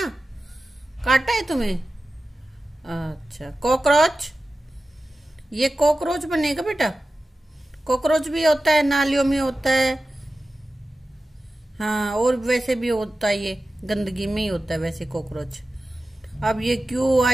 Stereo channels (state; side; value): normal; both; correlation 0.94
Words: काटा है तुम्हें? अच्छा। कॉकरोच, ये कॉकरोच बनेगा बेटा। कॉकरोच भी होता है, नालियों में होता है, हाँ, और वैसे भी होता है, ये गंदगी में ही होता है वैसे कॉकरोच। अब ये